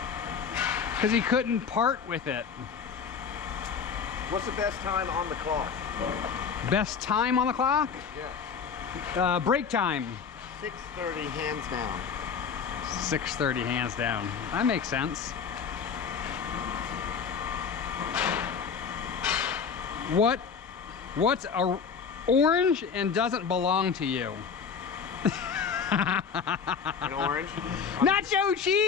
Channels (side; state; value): right; quieter; 6.3 dB